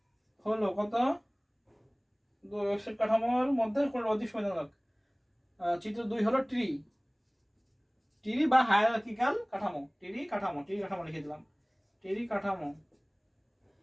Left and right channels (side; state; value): both; identical; correlation 1.00